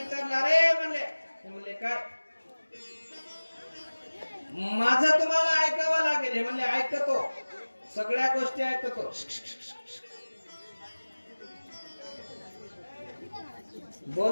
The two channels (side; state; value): both; inverted; correlation -1.00